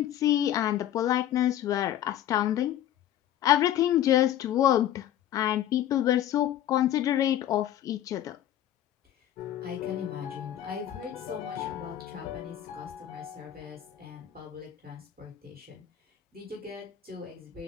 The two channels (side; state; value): right; quieter; 11.6 dB